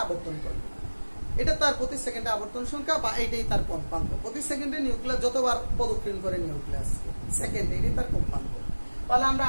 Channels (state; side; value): inverted; both; correlation -1.00